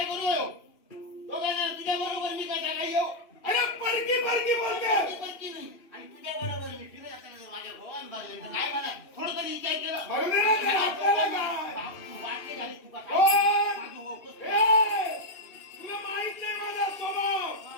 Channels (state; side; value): late; right; 2.8 ms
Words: करू दोघांना तुझ्या बरोबर मी कसा काय येऊ. अरे परकी बोलते. परकी नाही आणि तुझ्या बरोबर मी फिरत असताना जर माझ्या भगवान बाजले तर काय म्हणा थोडं तरी विचार केलं वाक्य झाली तुका तुला माहित नाही माझा स्वभाव.